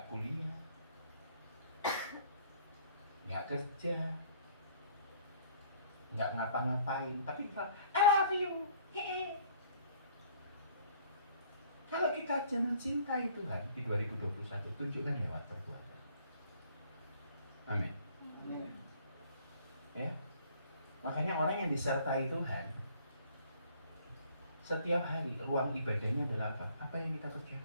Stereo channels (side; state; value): both; inverted; correlation -0.57